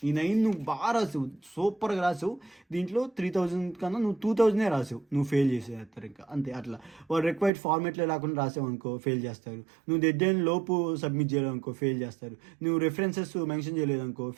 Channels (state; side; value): drops out; left; at 7.5 s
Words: నువ్వు బాగా రాసావు, సూపర్గా రాసావు. దీంట్లో 3000 కన్నా నువ్వు 2000 రాసావు, నువ్వు ఫెయిల్ చేసేస్తారు. ఇంకా అంతే. అట్లా వాళ్ళు రిక్వైర్డ్ ఫార్మేట్లో లేకుండా రాసావు అనుకో ఫెయిల్ చేస్తారు. నువ్వు డెడ్లైన్ లోపు సబ్మిట్ చేయలేదనుకో ఫెయిల్ చేస్తారు. నువ్వు రెఫరెన్సెస్ మెన్షన్ చేయలేదనుకో